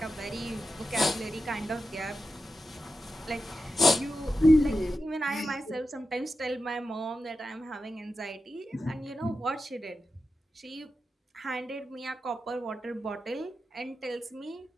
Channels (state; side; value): normal; both; correlation 0.90